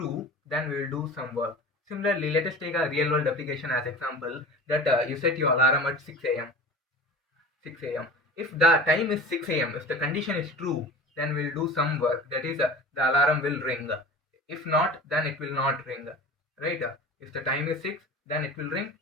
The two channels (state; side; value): normal; both; correlation 0.37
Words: then we'll do some work. Similarly, let us take a real world application as example that you set your alarm at 6 a.m. 6 a.m. If the time is 6 a.m., if the condition is true, then we'll do some work. That is, the alarm will ring. If not, then it will not ring. Right? If the time is 6, then it will ring.